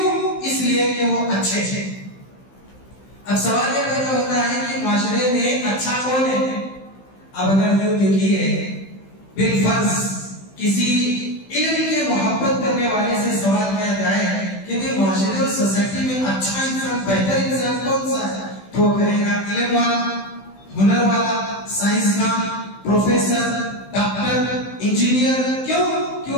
इसलिए कि वो अच्छे थे। अब सवाल ये पैदा होता है कि माशरे में अच्छा कौन है। अब अगर यूं देखिए, बिलफर्ज किसी इल्म के मोहब्बत करने वाले से सवाल किया जाए कि भाई माशरे और सोसाइटी में अच्छा इंसान, बेहतर इंसान कौन सा है, तो कहेगा इल्म वाला, हुनर वाला, साइंसदान, प्रोफेसर, डॉक्टर, इंजीनियर। क्यों?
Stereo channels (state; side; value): late; right; 15 ms